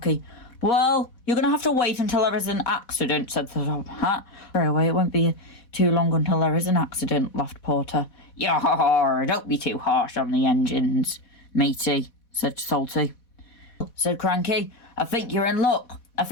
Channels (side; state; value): right; late; 4.1 ms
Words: "Well, you're going to have to wait until there is an accident," said the Top Hat. "Railway, it won't be too long until there is an accident," laughed Porter. "Yar, don't be too harsh on the engines, matey," said Salty. said Cranky. I think you're in luck. I